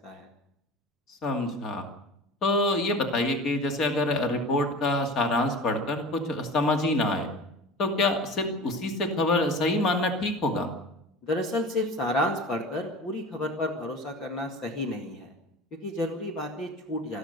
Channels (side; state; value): both; normal; correlation 0.36